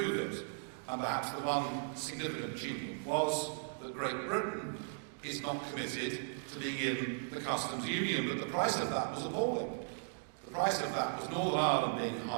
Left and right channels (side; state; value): left; silent; digital silence